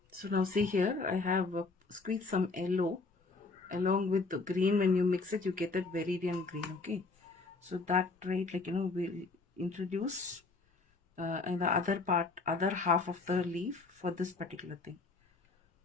So now see here, I have squeezed some yellow along with the green. When you mix it, you get that viridian green. Okay, so that right, like, we'll introduce and the other half of the leaf for this particular thing.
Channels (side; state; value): right; quieter; 3.8 dB